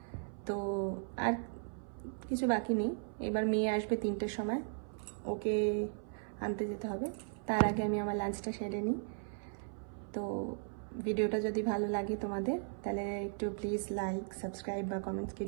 তো আর কিছু বাকি নেই। এবার মেয়ে আসবে 3টের সময়, ওকে আনতে যেতে হবে। তার আগে আমি আমার লাঞ্চটা সেরে নিই। তো ভিডিওটা যদি ভালো লাগে তোমাদের, তাহলে একটু প্লিজ লাইক, সাবস্ক্রাইব বা কমেন্টস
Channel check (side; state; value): left; silent; 53 dB below the other